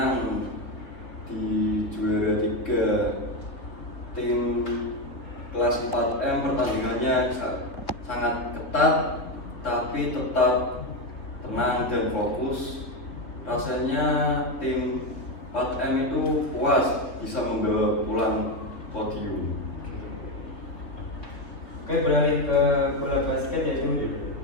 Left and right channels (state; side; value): late; right; 3.8 ms